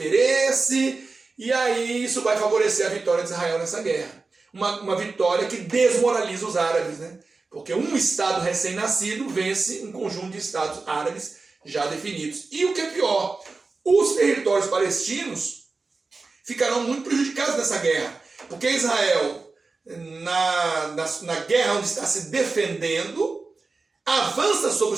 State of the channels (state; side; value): quieter; left; 3.9 dB